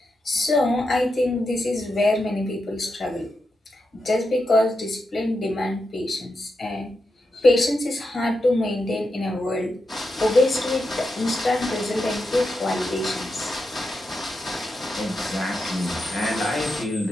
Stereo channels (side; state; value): both; normal; correlation 0.86